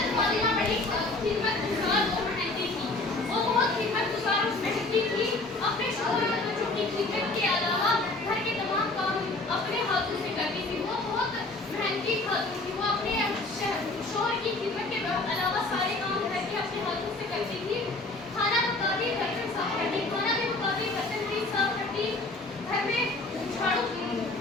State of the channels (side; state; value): right; quieter; 3.0 dB